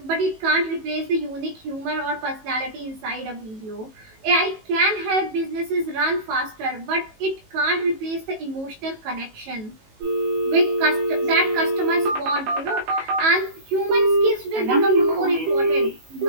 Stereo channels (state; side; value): late; left; 18 ms